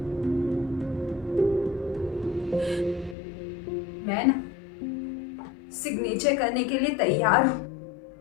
मैं ना सिग्नेचर करने के लिए तैयार हूँ।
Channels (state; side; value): drops out; right; at 3.2 s